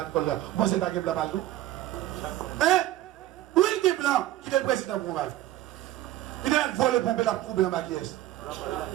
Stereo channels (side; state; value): left; quieter; 14.6 dB